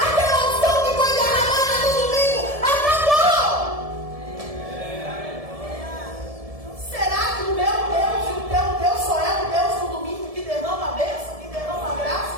unção que foi derramada no domingo acabou. Será que o meu Deus e o teu Deus só é o Deus do domingo que derrama a bênção, que derrama a graça?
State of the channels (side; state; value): left; late; 1.7 ms